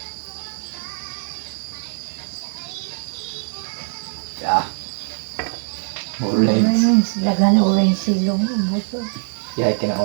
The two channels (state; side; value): silent; left; 64 dB below the other